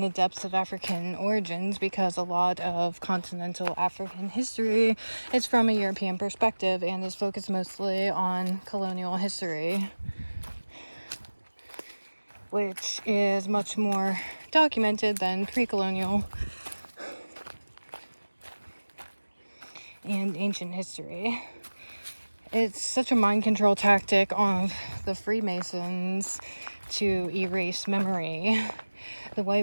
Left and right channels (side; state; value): both; inverted; correlation -1.00